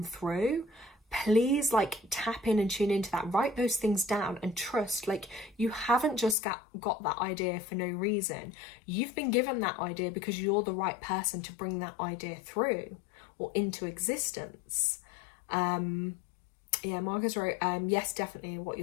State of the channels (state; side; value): drops out; right; at 6.4 s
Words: through, please like tap in and tune into that, write those things down and trust like you haven't just got that idea for no reason. You've been given that idea because you're the right person to bring that idea through or into existence. Yeah, Marcus wrote, yes, definitely what